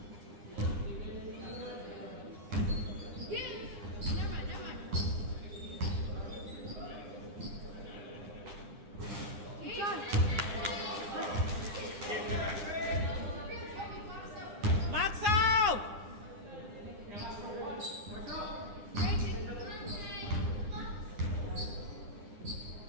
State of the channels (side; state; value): left; late; 9.9 ms